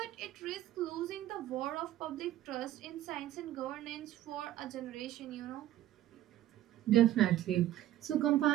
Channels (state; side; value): quieter; left; 13.6 dB